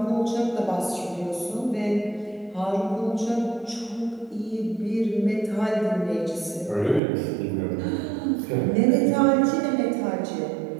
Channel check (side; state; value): left; drops out; at 7.0 s